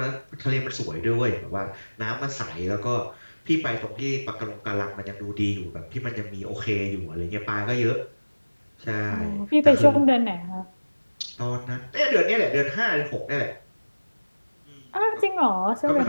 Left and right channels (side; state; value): both; inverted; correlation -1.00